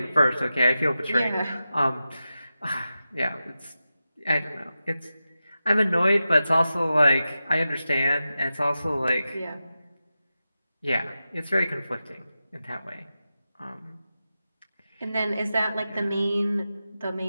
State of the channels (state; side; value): inverted; both; correlation -0.92